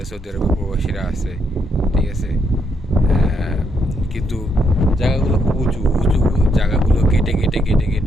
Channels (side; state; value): both; normal; correlation 0.76